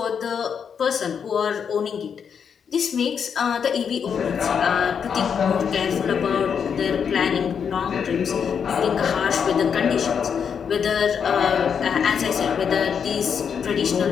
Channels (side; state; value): right; quieter; 7.1 dB